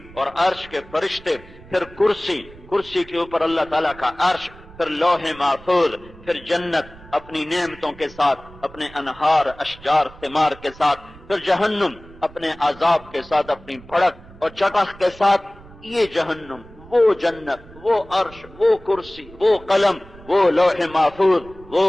اور عرش کے فرشتے، پھر کرسی کے اوپر اللہ تعالیٰ کا عرش، پھر لوح محفوظ، پھر جنت اپنی نعمتوں کے ساتھ، اپنے انہار، اشجار، ثمار کے ساتھ، پھر جہنم اپنے عذاب کے ساتھ، اپنی بھڑک اور چٹخ کے ساتھ۔ یہ جہنم، وہ جنت، وہ عرش، وہ کرسی، وہ قلم، وہ لوح محفوظ،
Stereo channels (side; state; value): right; noise; rumble, 21 dB below the sound